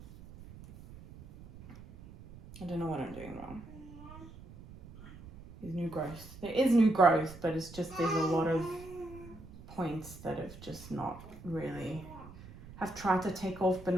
I don't know what I'm doing wrong. There's new growth. There is new growth, but it's just there's a lot of points that have just not really... have tried to take off but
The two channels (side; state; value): right; noise; rumble, 17 dB below the sound